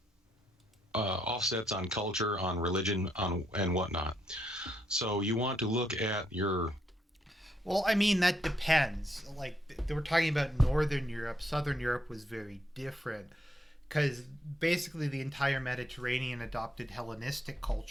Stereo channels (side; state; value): both; normal; correlation 0.77